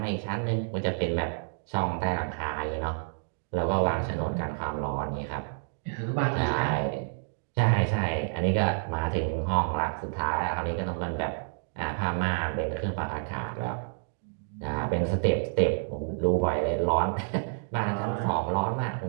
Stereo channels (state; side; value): silent; left; digital silence